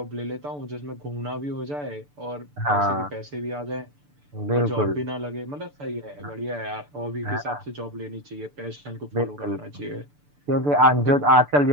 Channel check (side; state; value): left; late; 6.9 ms